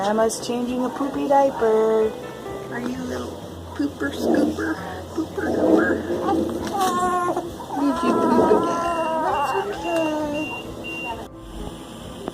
changing a poopy diaper. Are you a little pooper scooper? Pooper gooper? Did you poop again? That's okay.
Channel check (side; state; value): both; identical; correlation 1.00